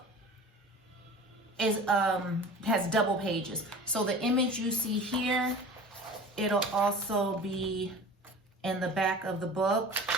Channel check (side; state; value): both; normal; correlation 0.39